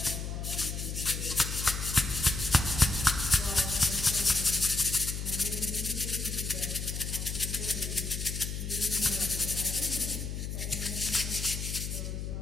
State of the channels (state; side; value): noise; left; hum, 4 dB below the sound